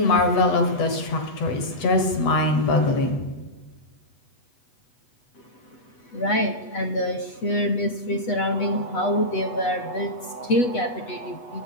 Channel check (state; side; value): late; right; 8.1 ms